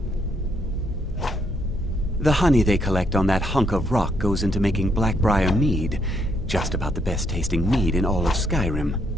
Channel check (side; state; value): both; normal; correlation 0.73